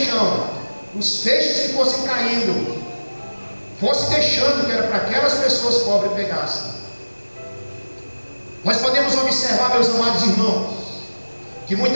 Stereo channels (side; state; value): both; inverted; correlation -1.00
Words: os feixes que fossem caindo, fosse deixando, que era para aquelas pessoas pobres pegassem. Nós podemos observar, meus amados irmãos, que